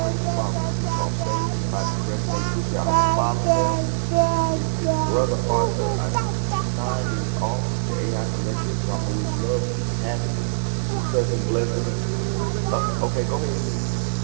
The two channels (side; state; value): left; silent; digital silence